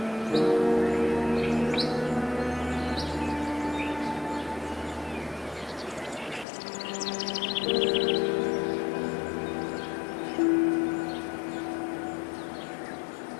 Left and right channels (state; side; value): drops out; right; at 6.5 s